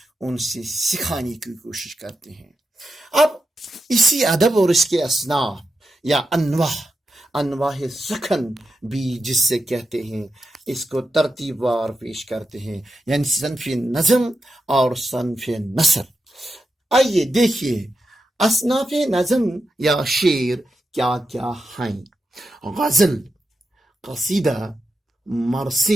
ان سے سکھانے کی کوشش کرتے ہیں۔ اب اسی ادب اور اس کے اصناف یا انواع سخن بھی جس سے کہتے ہیں، اس کو ترتیب وار پیش کرتے ہیں، یعنی صنف نظم اور صنف نثر۔ آئیے دیکھیے اصناف نظم یا شعر کیا کیا ہیں۔ غزل، قصیدہ،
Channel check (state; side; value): normal; both; correlation 0.88